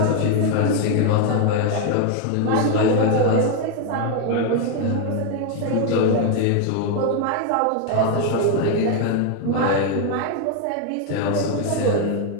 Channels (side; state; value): both; different; correlation 0.01